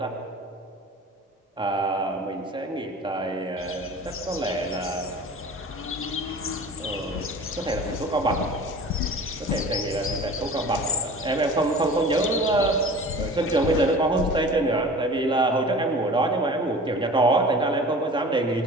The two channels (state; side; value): normal; both; correlation 0.41